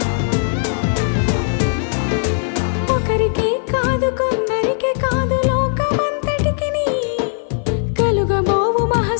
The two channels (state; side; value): silent; right; 56 dB below the other